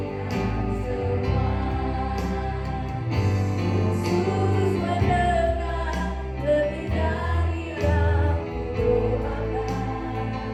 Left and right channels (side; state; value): both; identical; correlation 1.00